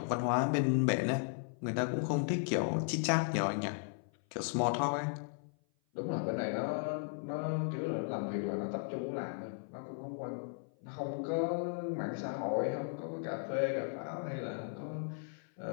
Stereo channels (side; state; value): right; silent; 54 dB below the other